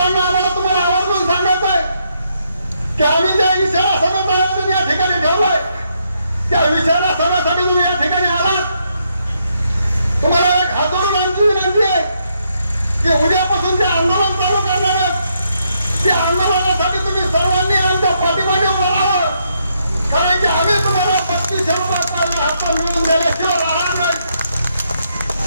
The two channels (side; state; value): both; inverted; correlation -0.76